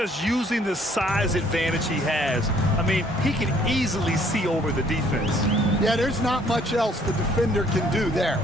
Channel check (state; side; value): normal; both; correlation 0.62